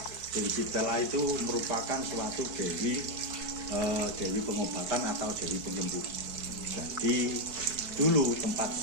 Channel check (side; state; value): left; late; 4.6 ms